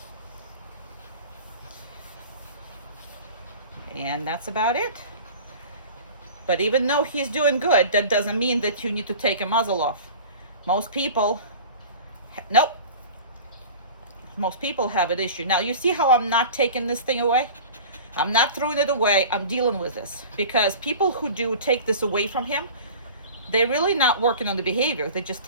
And that's about it. But even though he's doing good, that doesn't mean that you need to take a muzzle off. Most people, nope. Most people have an issue. Now, you see how I'm not taking this thing away? I'm not throwing it away. I'm dealing with this. Because people who do take this away from him, they're really not working on the behavior. They just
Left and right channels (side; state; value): both; inverted; correlation -0.38